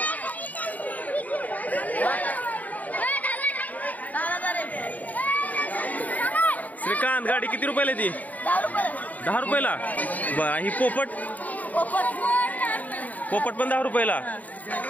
श्रीकांत गाडी किती रुपयाला ती? 10 रुपयाला. बरं ही पोपट? पोपट पण 10 रुपयाला.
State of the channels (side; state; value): right; late; 0.075 ms